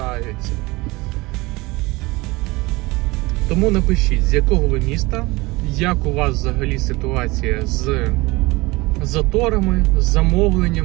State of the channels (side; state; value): left; quieter; 22.5 dB